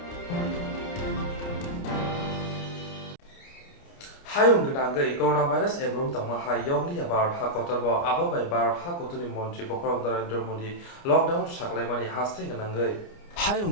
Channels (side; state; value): right; late; 29 ms